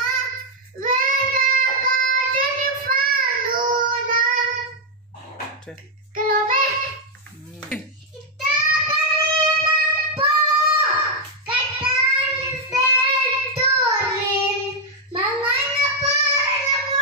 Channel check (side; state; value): both; normal; correlation 0.00